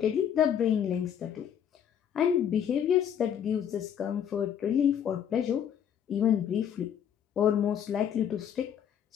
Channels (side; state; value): right; quieter; 8.9 dB